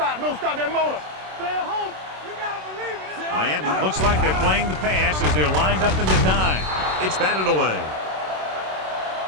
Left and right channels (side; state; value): left; late; 27 ms